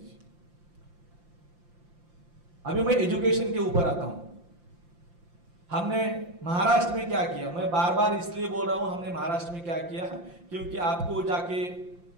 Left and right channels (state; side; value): late; left; 5.8 ms